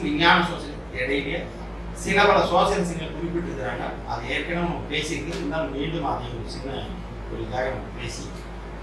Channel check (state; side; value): identical; both; correlation 1.00